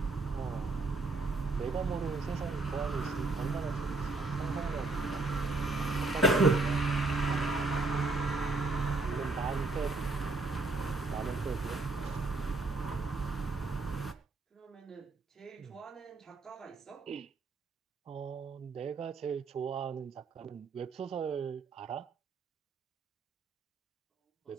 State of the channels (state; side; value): quieter; left; 3.5 dB